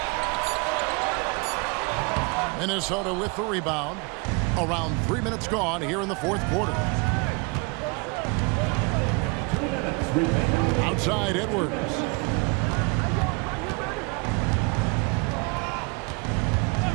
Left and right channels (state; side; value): quieter; left; 30.0 dB